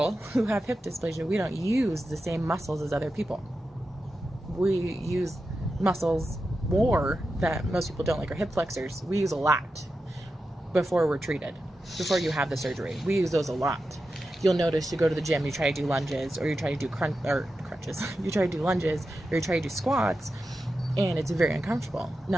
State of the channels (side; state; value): both; normal; correlation 0.90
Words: who have hip dysplasia, we don't use the same muscles as other people. We use muscles more that most people don't, like our hip flexors. We use a lot before we're treated, before you have the surgery. We use those a lot. You'll notice you go to the gym, you try to do lunges, or you try to do crunches. You try to do lunges, or you try to do squats, and it's very uncomfortable.